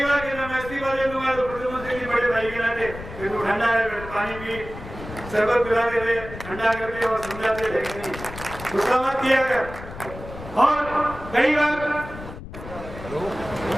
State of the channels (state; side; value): noise; left; rumble, 12 dB below the sound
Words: बार कहता मैं इस्तीफा दे दूंगा, तो प्रधानमंत्री जी बड़े भाई के नाते फिर तो ठंडा है, पानी पी, शरबत पिलाते थे, ठंडा करके और समझाते थे कि नहीं गुस्सा मत किया कर। और कई बार